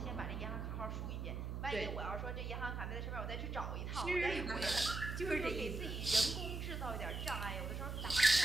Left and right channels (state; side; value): noise; right; hum, 4 dB below the sound